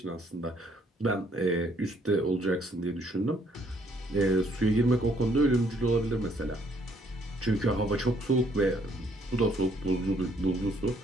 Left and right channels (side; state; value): both; normal; correlation 0.66